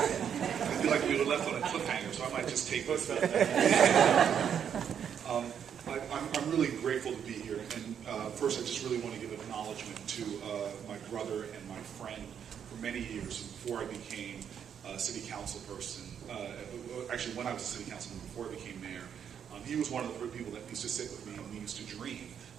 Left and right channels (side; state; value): left; quieter; 8.3 dB